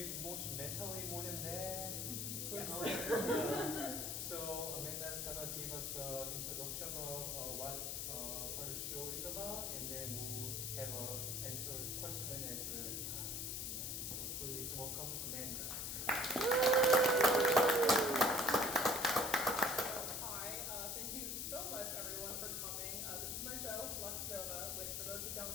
mentally more than that. Yes. So Amanda's gonna give us an introduction of what her show is about, and then we'll have a question and answer time. So please welcome Amanda. Hi, thank you so much everyone for coming. This is my show, Lux Nova, which for those who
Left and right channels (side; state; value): left; noise; hiss, 2 dB below the sound